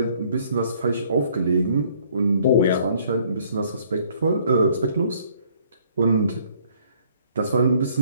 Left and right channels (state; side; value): inverted; both; correlation -0.62